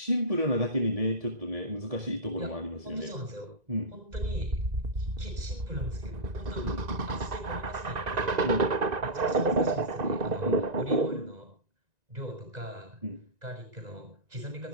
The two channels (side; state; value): left; late; 1.9 ms